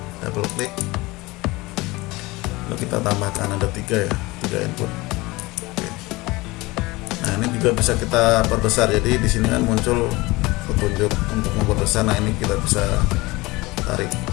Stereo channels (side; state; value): right; quieter; 21.8 dB